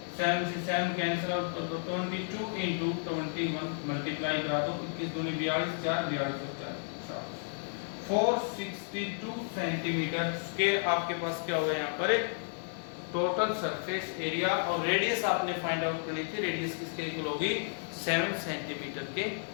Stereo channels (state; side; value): silent; right; digital silence